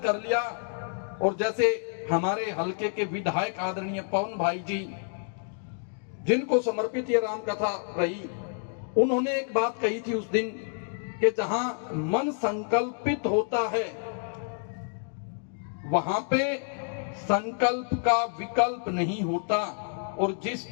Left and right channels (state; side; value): silent; right; 58 dB below the other